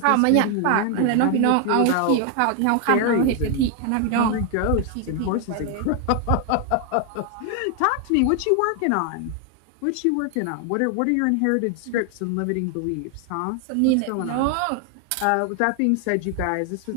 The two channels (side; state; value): both; different; correlation 0.00